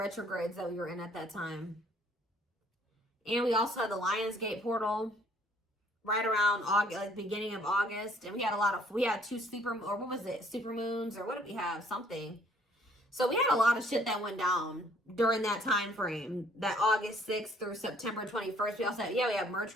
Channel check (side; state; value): both; normal; correlation 0.60